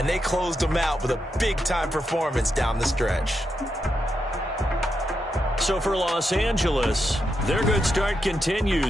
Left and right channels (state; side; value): normal; both; correlation 0.84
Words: they closed them out with a big-time performance down the stretch. So for Los Angeles, their good start